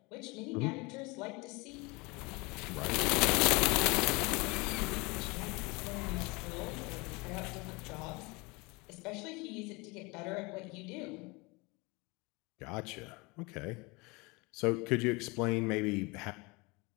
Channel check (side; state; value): right; quieter; 26.3 dB